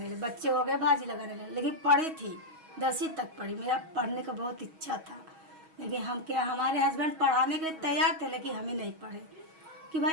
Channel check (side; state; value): left; late; 6.3 ms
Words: लगे. बच्चे हो गए, भाजी लगाने लगे. लेकिन पढ़ी थी, 10वीं तक पढ़ी. मेरा पढ़ने का बहुत इच्छा था, लेकिन हम क्या, हमारे हस्बैंड पढ़ाने के लिए तैयार थे, लेकिन हम ही नहीं पढ़े. कि